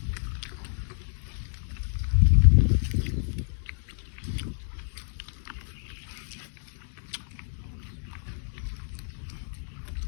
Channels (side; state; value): right; silent; 59 dB below the other